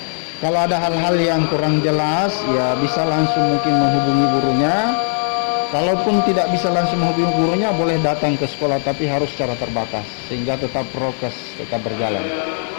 Kalau ada hal-hal yang kurang jelas, ya bisa langsung mungkin menghubungi gurunya. Kalaupun tidak bisa langsung menghubungi gurunya, boleh datang ke sekolah, tapi harus secara terbatas sehingga tetap prokes tetap berjalan.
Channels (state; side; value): silent; right; digital silence